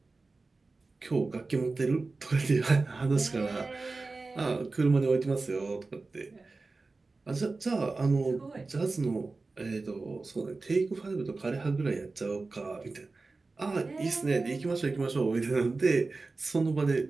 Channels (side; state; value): left; quieter; 3.7 dB